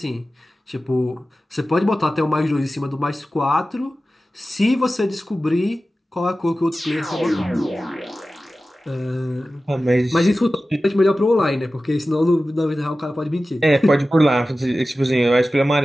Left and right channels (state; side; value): normal; both; correlation 0.95